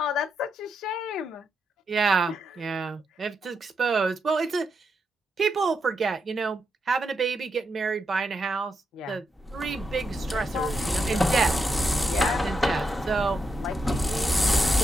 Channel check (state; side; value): normal; both; correlation 0.84